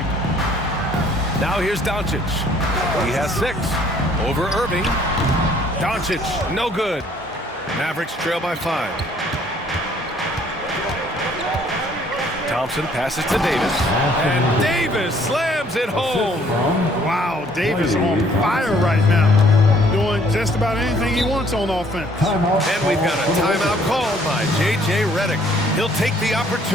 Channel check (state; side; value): normal; both; correlation 0.61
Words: Now here's Doncic. He has 6. Over Irving. Doncic, no good. Mavericks trail by 5. Thompson passes to Davis. And Davis slams it home. Wow, Davis on fire right now. Doing just about anything he wants on offense. And we've got a timeout called by J.J. Redick. He'll take the